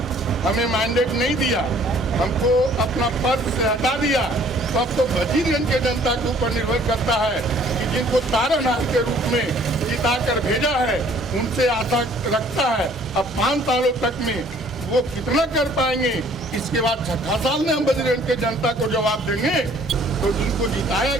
हमें मैंडेट नहीं दिया, हमको अपना पद से हटा दिया, तो अब तो वजीरगंज के जनता के ऊपर निर्भर करता है कि जिनको तारनहार के रूप में जिता कर भेजा है उनसे आशा रखता है। अब 5 सालों तक में वो कितना कर पाएंगे, इसके बाद 6ठा साल में हम वजीरगंज के जनता को जवाब देंगे। तो जिनको जिताया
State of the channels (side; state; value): both; normal; correlation 0.57